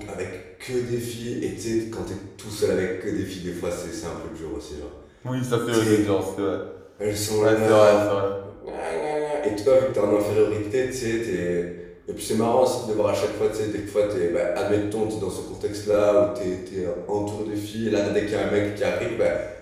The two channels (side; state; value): both; identical; correlation 1.00